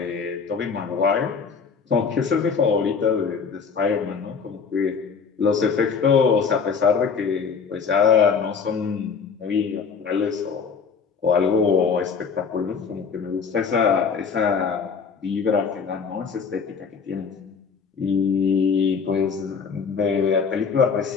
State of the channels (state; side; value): quieter; right; 5.8 dB